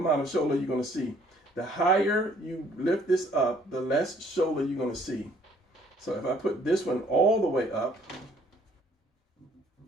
of shoulder you're going to see. The higher you lift this up, the less shoulder you're going to see. So if I put this one all the way up,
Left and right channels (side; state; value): both; normal; correlation 0.61